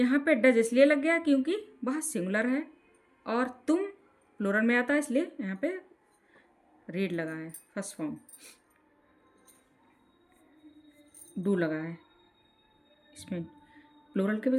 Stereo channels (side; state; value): both; identical; correlation 1.00